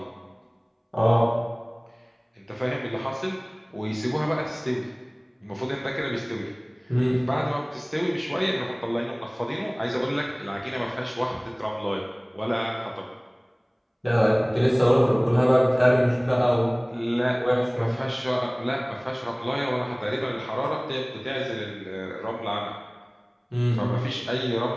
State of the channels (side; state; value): both; identical; correlation 1.00